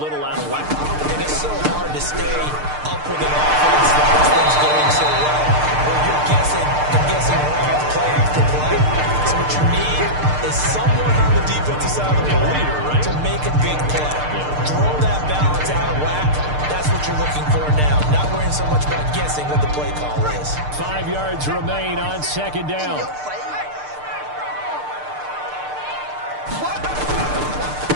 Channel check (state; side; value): late; left; 6.6 ms